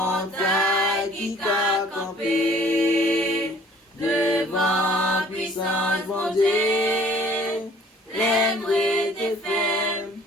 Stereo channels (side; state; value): both; normal; correlation 0.55